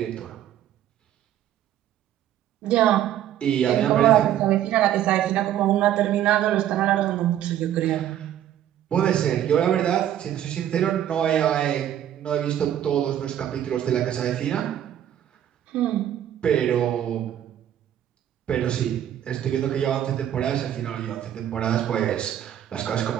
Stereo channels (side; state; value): left; quieter; 11.1 dB